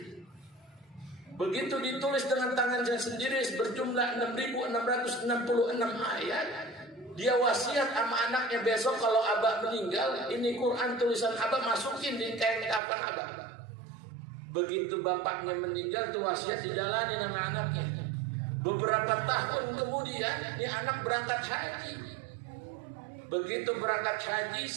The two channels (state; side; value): drops out; left; at 12.8 s